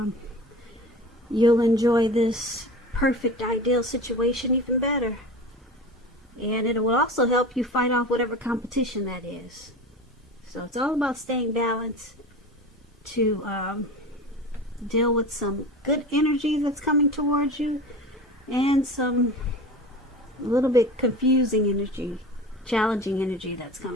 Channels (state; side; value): normal; both; correlation 0.33